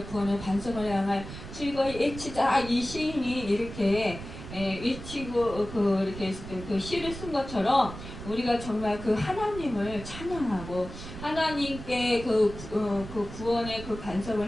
구원의 반석을 향할 즐거이 외치자, 이 시인이 이렇게 외치고 이렇게 그 시를 쓴 것처럼 우리가 정말 그 하나님을 찬양하고 하나님께 그 구원의 그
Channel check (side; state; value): right; noise; rumble, 11 dB below the sound